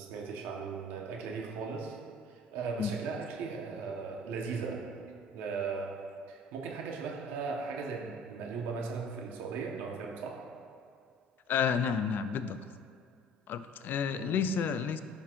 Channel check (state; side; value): normal; both; correlation 0.48